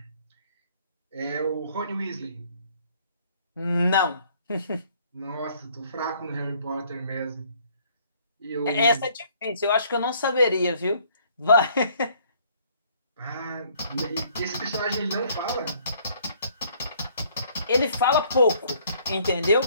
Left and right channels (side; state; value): both; inverted; correlation -0.61